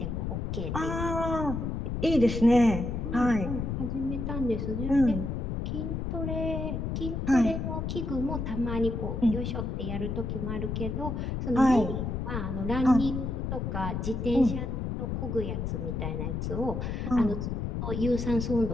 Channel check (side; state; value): left; noise; rumble, 2 dB below the sound